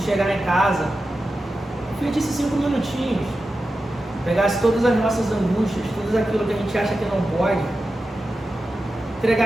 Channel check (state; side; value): normal; both; correlation 0.92